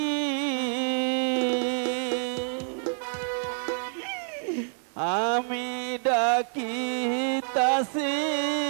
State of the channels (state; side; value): silent; left; 60 dB below the other